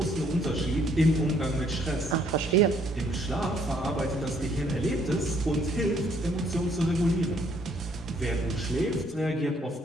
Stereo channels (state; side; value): normal; both; correlation 0.66